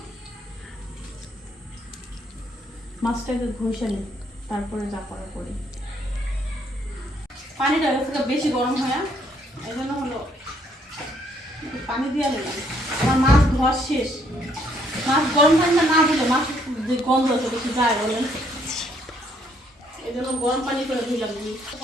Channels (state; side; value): normal; both; correlation 0.68